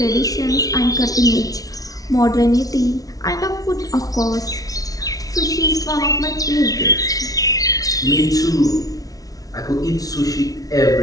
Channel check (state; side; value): late; right; 0.18 ms